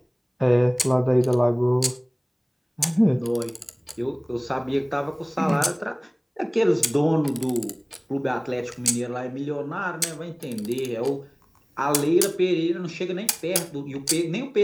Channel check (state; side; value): identical; both; correlation 1.00